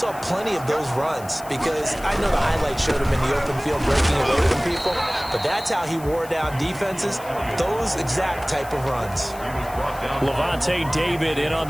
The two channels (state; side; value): noise; left; hiss, 18 dB below the sound